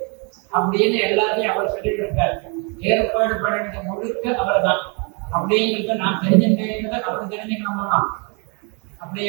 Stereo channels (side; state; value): left; quieter; 34.4 dB